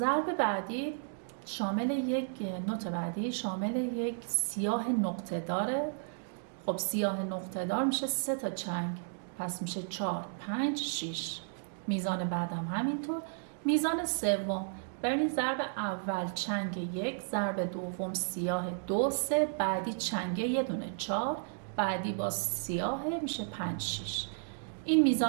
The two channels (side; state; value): left; silent; digital silence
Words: بعدی شامل یک نوت بعدی شامل یک سیاه نقطه داره. خب سیاه نقطه دار میشه 3 تا چنگ پس میشه 4 5 6. میزان بعدم همینطور. میزان سوم ببینید، ضرب اول چنگ 1، ضرب دوم سیاه 2 3، بعدی چنگ یه دونه 4، بعدی با سیاه میشه 5 6. این